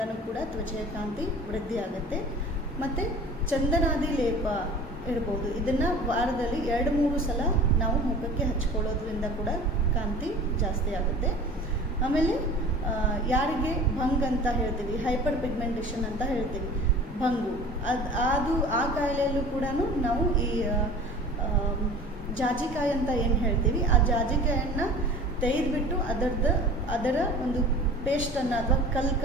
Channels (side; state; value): both; normal; correlation 0.42